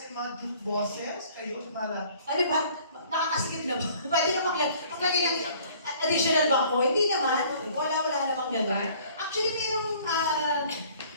mga joke bosses, kayo mala. Ano ba? Nakakasikip na ba? Pwede na maglagay ng additional bangko? Hindi naman. Wala namang gano'n. Actually,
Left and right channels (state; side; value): inverted; both; correlation -0.54